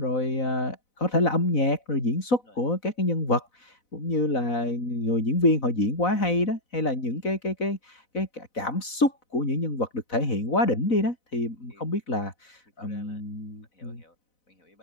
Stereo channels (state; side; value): late; right; 4.0 ms